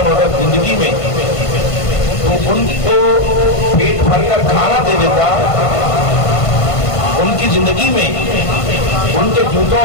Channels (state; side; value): late; right; 1.5 ms